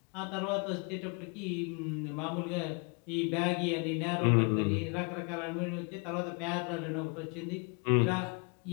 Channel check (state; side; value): quieter; right; 34.9 dB